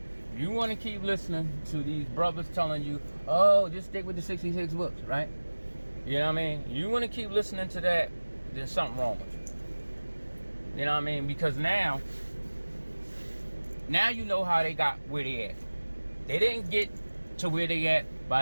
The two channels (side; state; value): both; inverted; correlation -1.00